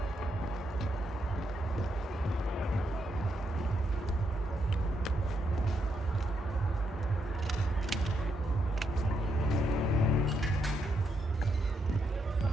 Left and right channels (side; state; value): both; normal; correlation 0.80